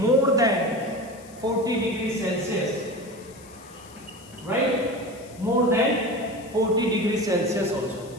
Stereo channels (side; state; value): left; noise; hiss, 23 dB below the sound